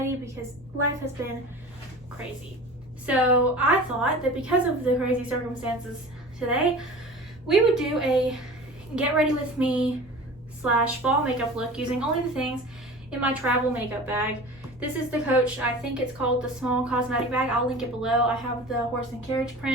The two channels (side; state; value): both; normal; correlation 0.37